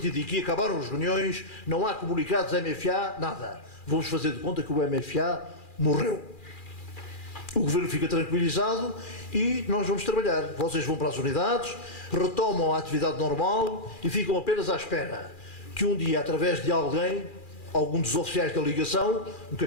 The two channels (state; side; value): late; right; 2.4 ms